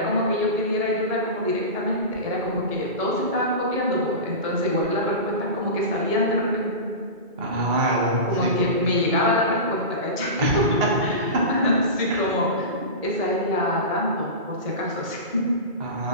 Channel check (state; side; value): late; left; 2.3 ms